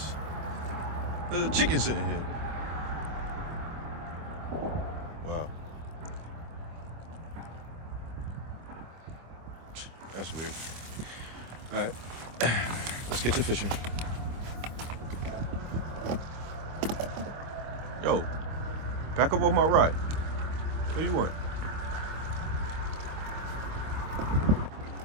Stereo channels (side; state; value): left; late; 25 ms